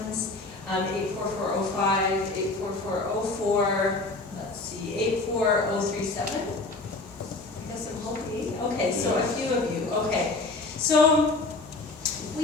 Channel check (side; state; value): right; quieter; 3.2 dB